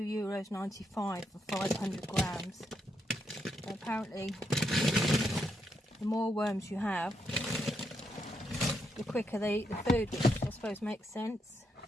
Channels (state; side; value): normal; both; correlation 0.80